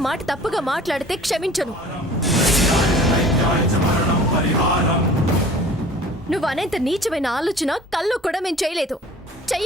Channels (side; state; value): both; normal; correlation 0.46